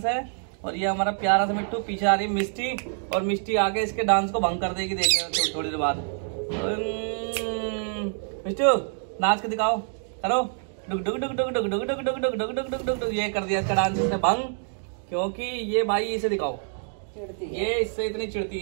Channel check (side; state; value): left; silent; 61 dB below the other